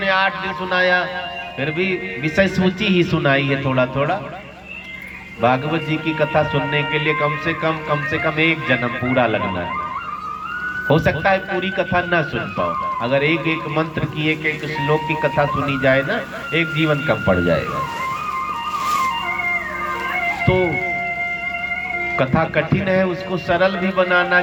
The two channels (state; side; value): identical; both; correlation 1.00